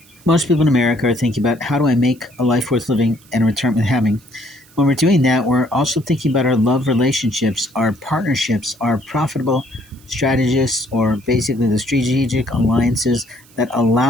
Most people in America are thinking about how do I make a life worth living and return with having. When we're doing that, we're also thinking about our love relationships, our partnerships, our profitable strategists, or basically the strategic alliances that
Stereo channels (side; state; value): right; noise; hiss, 27 dB below the sound